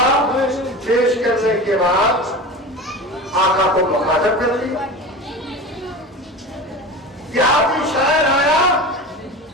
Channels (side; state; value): both; normal; correlation 0.31